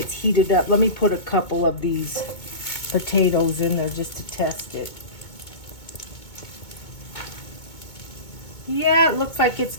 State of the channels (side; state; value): right; late; 2.2 ms